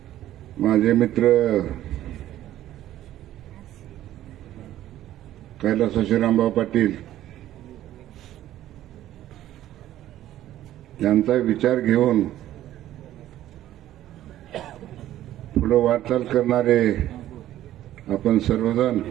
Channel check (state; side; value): quieter; left; 13.2 dB